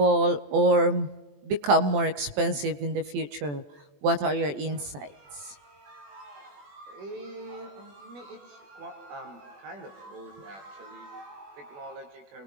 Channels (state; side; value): late; left; 21 ms